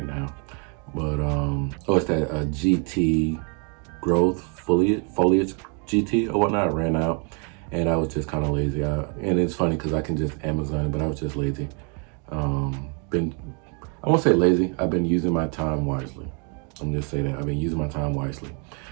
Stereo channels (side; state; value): left; quieter; 37.1 dB